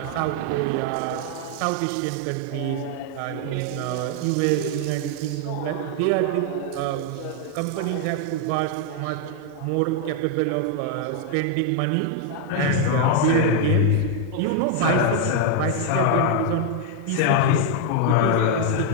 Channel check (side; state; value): both; different; correlation 0.00